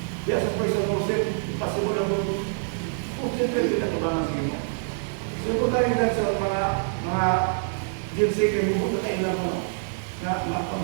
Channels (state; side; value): silent; left; digital silence